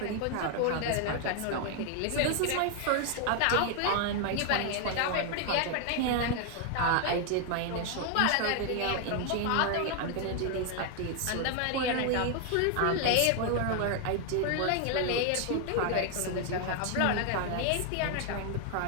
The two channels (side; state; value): both; different; correlation 0.00